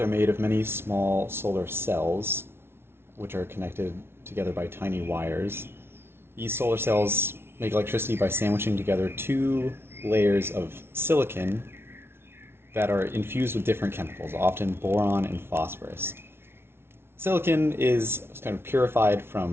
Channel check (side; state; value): left; late; 0.12 ms